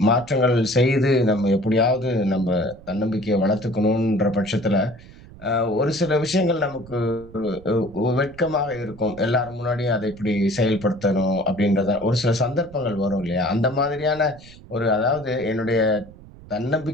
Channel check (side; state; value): right; noise; rumble, 19 dB below the sound